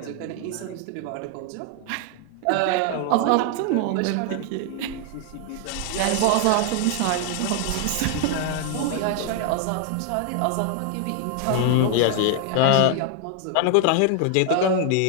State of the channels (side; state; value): both; different; correlation 0.00